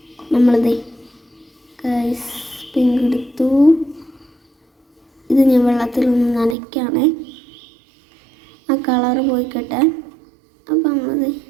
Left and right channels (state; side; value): drops out; left; at 6.6 s